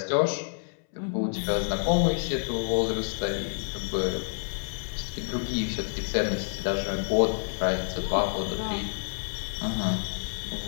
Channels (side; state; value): right; silent; 59 dB below the other